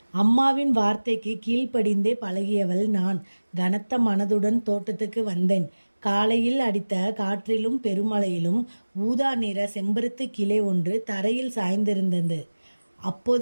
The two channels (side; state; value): both; inverted; correlation -1.00